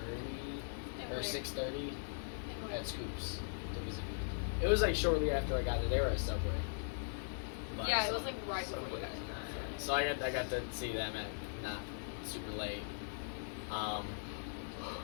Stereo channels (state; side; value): silent; right; 51 dB below the other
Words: 5:30 or 6:30 at Scoops to visit. It was like shortly after I got there. They were at Subway. But, yeah, it was like right before you guys. So I got to see them at not super late. Yeah,